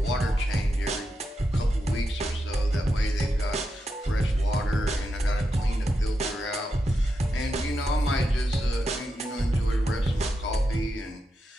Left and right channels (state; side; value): normal; both; correlation 0.86